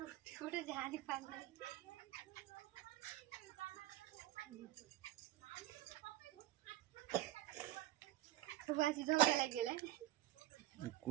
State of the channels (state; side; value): quieter; left; 15.6 dB